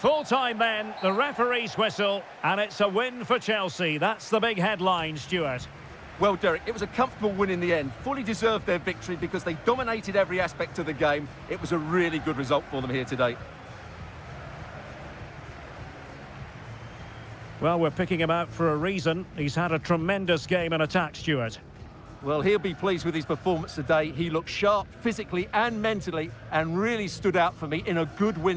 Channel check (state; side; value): identical; both; correlation 1.00